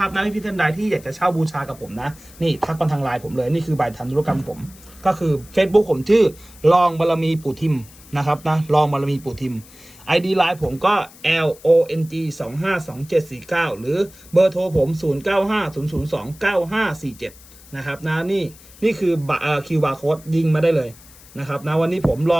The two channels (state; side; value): noise; left; hiss, 22 dB below the sound